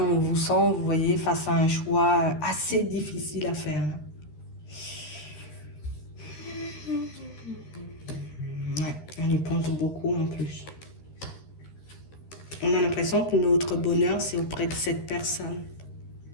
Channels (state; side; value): late; right; 13 ms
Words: vous sent, vous voyez, face à un choix assez difficile à faire. Ouais, on y pense beaucoup en plus. On a l'impression que notre bonheur, c'est auprès de cette personne.